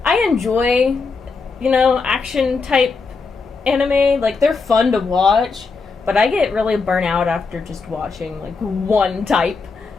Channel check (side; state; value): right; quieter; 4.5 dB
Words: I enjoy, action type anime. Like, they're fun to watch, but I get really burnt out after just watching like one type,